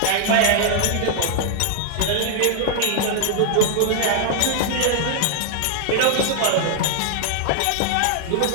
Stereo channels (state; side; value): different; both; correlation 0.00